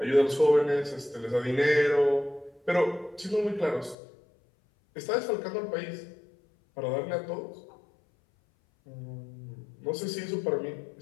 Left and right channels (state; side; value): drops out; right; at 4.0 s